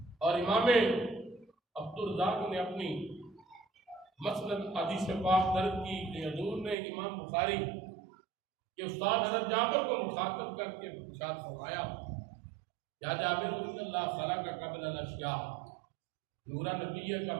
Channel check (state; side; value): drops out; left; at 6.8 s